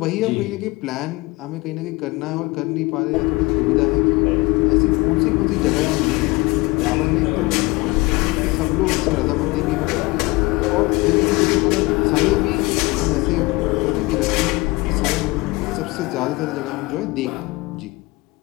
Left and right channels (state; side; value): quieter; right; 23.1 dB